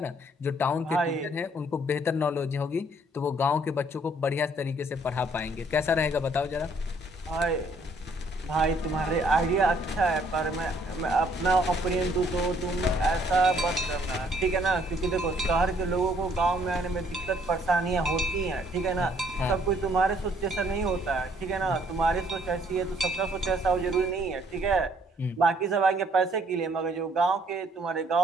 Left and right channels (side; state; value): both; normal; correlation 0.64